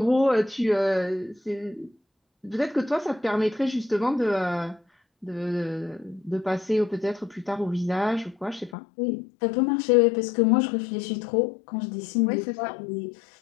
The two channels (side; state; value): right; drops out; at 8.8 s